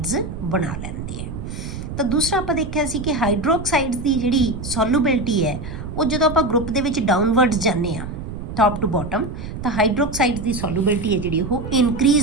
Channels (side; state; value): right; noise; rumble, 8 dB below the sound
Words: ਬਣਾ ਲੈਂਦੇ ਆ। ਤਾਂ ਦੂਸਰਾ ਆਪਾਂ ਦੇਖਿਆ ਸੀ ਕਿ ਹਾਈਡਰੋਕਸਾਈਡਸ ਦੀ ਜਿਹੜੀ ਸੋਲੂਬਿਲਿਟੀ ਹੈ ਉਹ ਜਦੋਂ ਆਪਾਂ ਗਰੁੱਪ ਦੇ ਵਿੱਚ ਡਾਊਨਵਰਡਸ ਜਾਂਦੇ ਹਾਂ ਟੌਪ ਟੂ ਬਾਟਮ ਤਾਂ ਹਾਈਡਰੋਕਸਾਈਡਸ ਦੀ ਸੋਲੂਬਿਲਿਟੀ ਹੈ ਜਿਹੜੀ ਉਹ